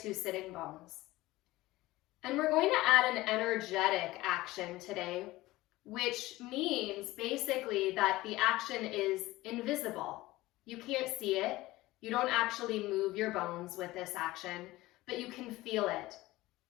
sitting bones. And we're going to add an energetic action today, which means basically that the action is invisible. You can't see it. You don't actually move your bones with this action, but you can feel it.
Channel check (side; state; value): right; quieter; 18.4 dB